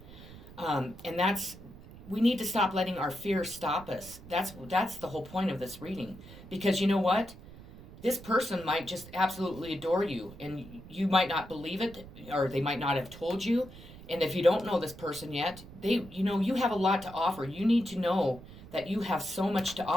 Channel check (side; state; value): right; noise; rumble, 17 dB below the sound